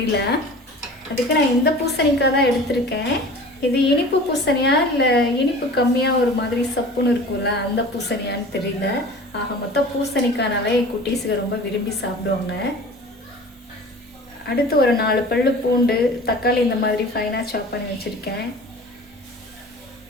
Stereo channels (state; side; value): normal; both; correlation 0.41